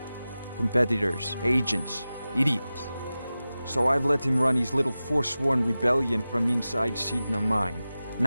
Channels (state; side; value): inverted; both; correlation -0.95